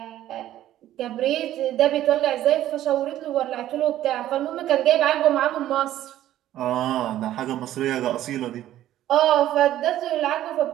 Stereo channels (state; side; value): quieter; left; 13.0 dB